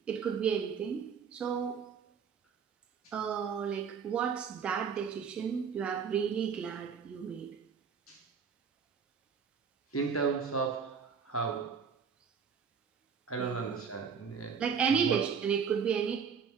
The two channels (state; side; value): quieter; left; 6.6 dB